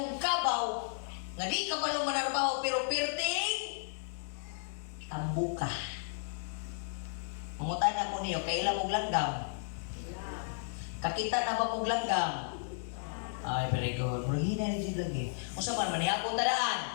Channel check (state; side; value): silent; right; digital silence